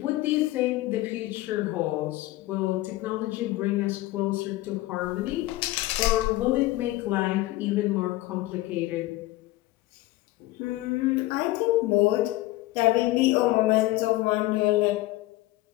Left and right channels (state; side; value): quieter; right; 17.9 dB